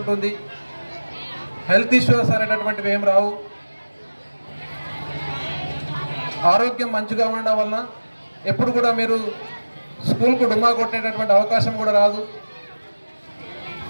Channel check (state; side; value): inverted; both; correlation -1.00